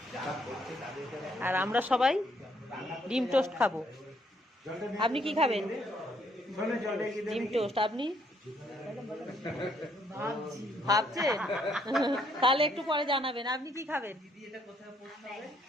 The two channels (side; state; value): both; normal; correlation 0.69